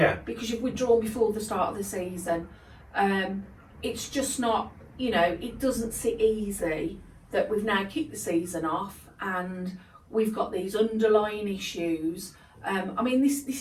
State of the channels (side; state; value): both; identical; correlation 1.00